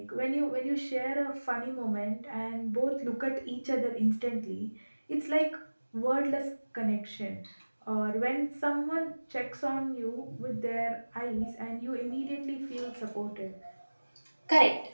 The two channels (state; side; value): inverted; both; correlation -1.00